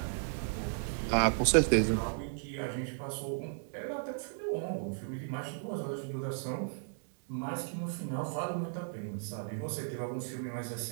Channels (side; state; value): left; silent; digital silence